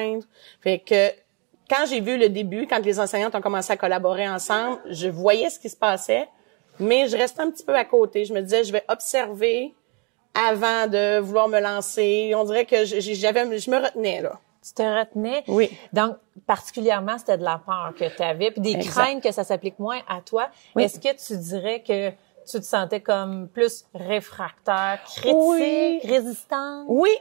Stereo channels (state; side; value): quieter; left; 33.0 dB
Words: Fait que, quand j'ai vu le début, quand les enseignantes ont commencé à collaborer ensemble, je voyais ce qui se passait, mais je restais un petit peu à côté. Je me disais, je vais observer avant de vouloir me lancer. On dirait que je me retenais, là. Tu te retenais? Oui. Donc, particulièrement, c'était de la peur que tu avais, puis des craintes que ça s'applique moins à toi. Oui. Est-ce que tu dirais que tu te sentais comme plus réfractaire, critique, résistante? Oui,